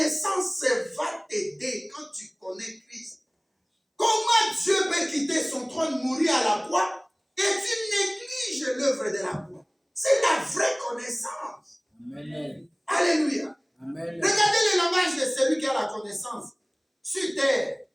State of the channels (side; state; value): both; identical; correlation 1.00